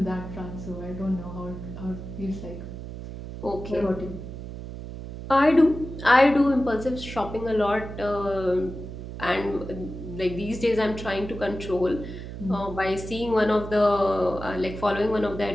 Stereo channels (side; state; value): right; noise; hum, 10 dB below the sound